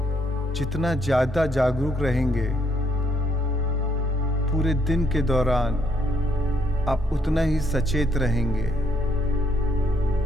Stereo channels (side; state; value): both; normal; correlation 0.71